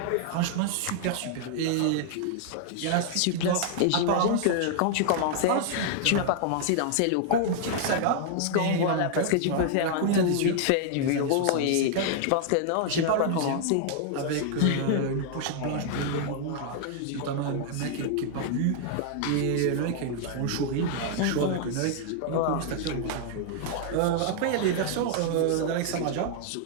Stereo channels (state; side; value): different; both; correlation 0.00